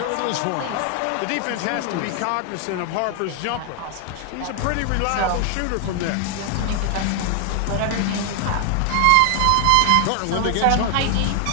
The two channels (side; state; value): both; different; correlation 0.00